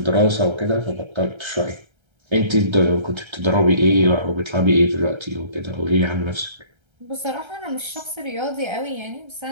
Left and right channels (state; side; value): late; left; 1.3 ms